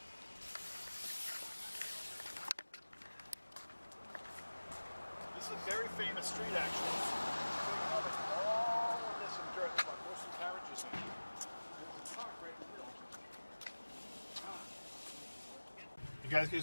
This is a very famous street, actually. All of this in dirt. There's like horse and carriages in here. There's a truck right in the middle. You guys get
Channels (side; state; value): both; inverted; correlation -1.00